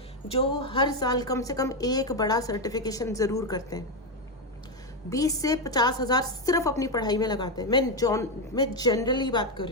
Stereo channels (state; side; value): normal; both; correlation 0.07